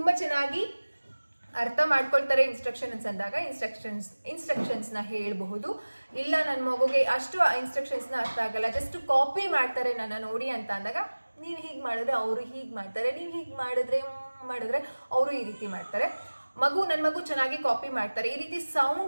ಚೆನ್ನಾಗಿ ಅರ್ಥ ಮಾಡ್ಕೊಳ್ತಾರೆ ಇನ್ಸ್ಟ್ರಕ್ಷನ್ಸ್ ಅಂದಾಗ ಇನ್ಸ್ಟ್ರಕ್ಷನ್ಸ್ನ ಹೇಳಬಹುದು. ಇಲ್ಲ ನನ್ನ ಮಗುಗೆ ಅಷ್ಟು ಇನ್ಸ್ಟ್ರಕ್ಷನ್ಸ್ನ ಅರ್ಥ ಆಗಲ್ಲ, ಜಸ್ಟ್ ಕಾಪಿ ಮಾಡ್ತಾರೆ ನನ್ನ ನೋಡಿ ಅಂತ ಅಂದಾಗ ನೀವು ಹೀಗೆ ಮಾಡಿದ್ರೆ ಅವರು ಹೀಗೆ ಮಾಡ್ತಾರೆ, ನೀವು ಹೀಗೆ ಮಾಡಿದ್ರೆ ಅವರು ಈ ರೀತಿ ಮಾಡ್ತಾರೆ. ನನ್ನ ಮಗು ಚೆನ್ನಾಗಿ ಕಾಪಿ ಮಾಡ್ತಾರೆ. ಈ ರೀತಿ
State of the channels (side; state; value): both; inverted; correlation -1.00